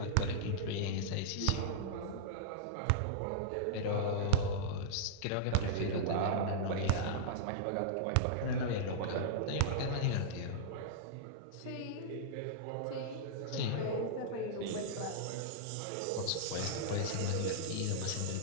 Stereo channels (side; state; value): both; different; correlation -0.03